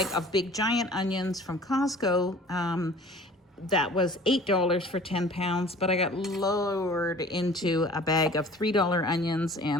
of big giant onions from Costco. That was $8 for 10 pounds, but I got lowered into a bag of $3 onions, and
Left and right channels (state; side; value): normal; both; correlation 0.47